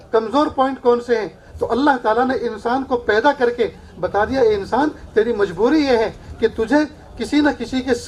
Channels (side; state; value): both; identical; correlation 1.00